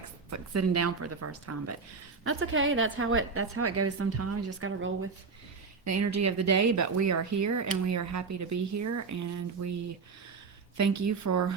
sitting down for the first time. But that's okay. That's how it goes sometimes. You just got to roll with the energy of the day. But we are here, and we are happy to be here, and we thank you for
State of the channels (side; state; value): left; quieter; 4.8 dB